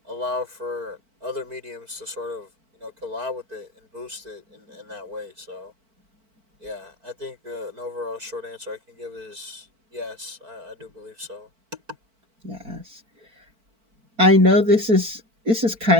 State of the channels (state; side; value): late; left; 4.5 ms